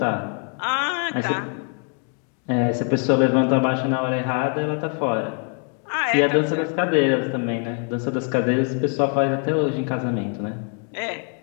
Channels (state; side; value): quieter; right; 38.8 dB